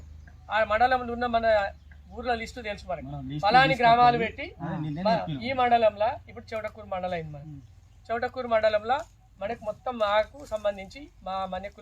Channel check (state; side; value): identical; both; correlation 1.00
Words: ఆ మండలంలో ఉన్న మన ఊర్ల లిస్టు తెలుసు మనకి, ఫలాని గ్రామాలు పెట్టి ఈ మండలంలో ఇప్పుడు చౌటకూరు మండలం అయింది. మనకి చౌటకూరు మండలంలో మనకు మొత్తం మాకు సంబంధించి మా మన్య